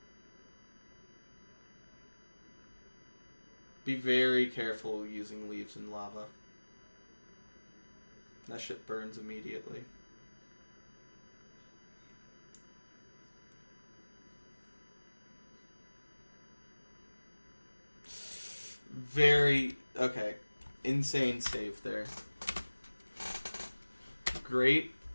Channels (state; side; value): inverted; both; correlation -1.00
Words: Be very careful using leaves in lava. That shit burns immediately. Very... Okay. Insane save there. Great